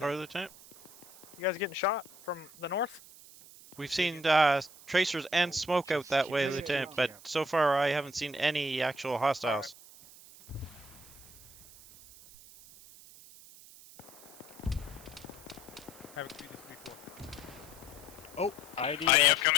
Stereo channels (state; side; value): noise; right; hiss, 20 dB below the sound